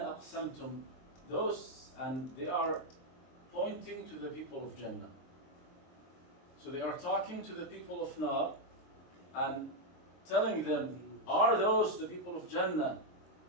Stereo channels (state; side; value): late; right; 23 ms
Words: those, and they are pointing to the people of Jannah. So they are talking to the people of Nar and telling them, are those the people of Jannah